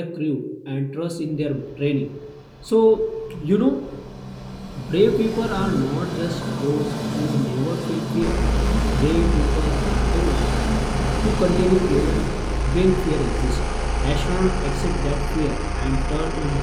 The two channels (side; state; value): both; identical; correlation 1.00